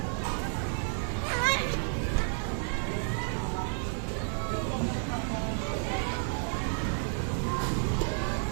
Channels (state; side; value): silent; left; 57 dB below the other